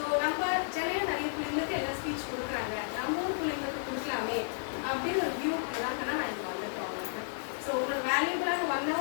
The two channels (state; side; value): silent; right; 56 dB below the other